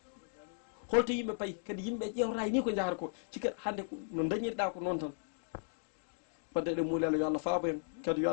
holto yimɓe payi kadi yimɓe ƴewrata ni ko jahata ko cikka hannde no dañirɗa ko noon tan wadde eɗen muulelo yo Allah faabo en kadi yo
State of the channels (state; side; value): silent; right; digital silence